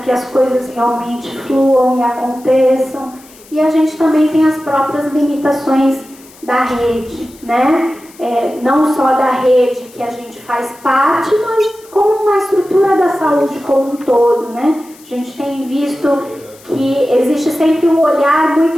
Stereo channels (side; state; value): left; noise; hiss, 24 dB below the sound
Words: as coisas realmente fluam e aconteçam. E a gente também tem as próprias limitações da rede, né? Não só da rede que a gente faz parte, mas como uma estrutura da saúde como um todo, né? A gente tem visto que existe sempre um olhar